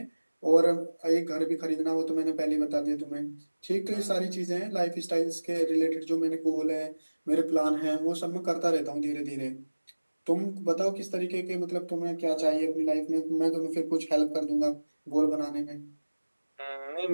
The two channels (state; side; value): inverted; both; correlation -1.00